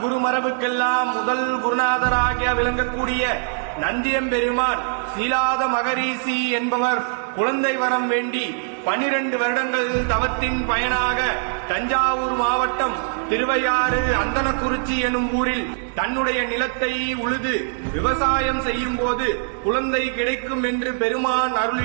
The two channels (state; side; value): silent; left; digital silence